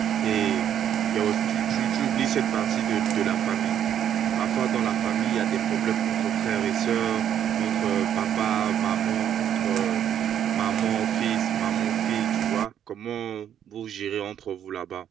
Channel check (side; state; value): left; quieter; 9.7 dB